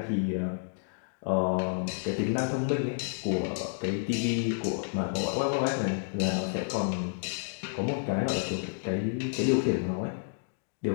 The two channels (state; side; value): silent; right; digital silence